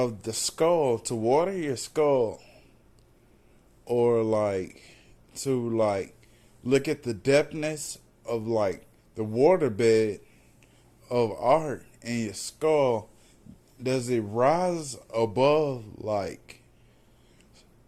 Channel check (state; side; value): identical; both; correlation 1.00